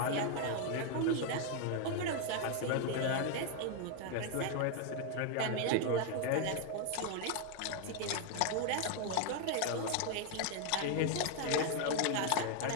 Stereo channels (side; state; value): both; different; correlation 0.01